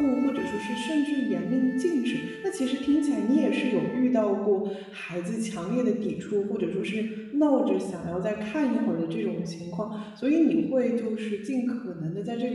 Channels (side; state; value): both; identical; correlation 1.00